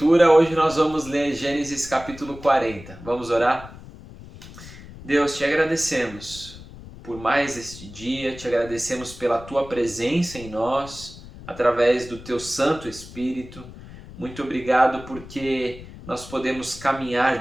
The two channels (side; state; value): left; noise; rumble, 16 dB below the sound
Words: hoje nós vamos ler Gênesis capítulo 40. Vamos orar? Deus, te agradecemos por mais este dia, te agradecemos pela tua presença em nós, através do teu Santo Espírito. Muito obrigado porque nós podemos caminhar